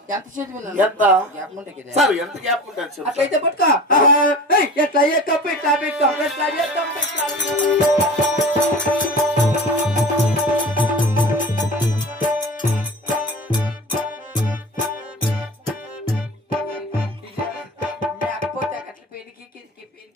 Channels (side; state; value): both; normal; correlation 0.36